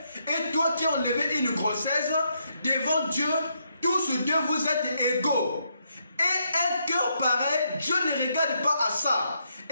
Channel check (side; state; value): both; inverted; correlation -0.77